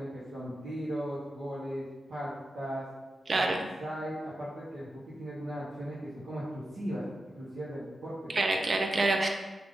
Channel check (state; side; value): normal; both; correlation 0.90